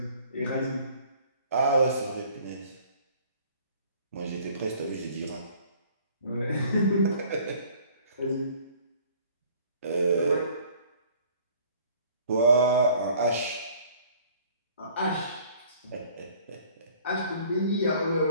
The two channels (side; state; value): both; inverted; correlation -0.54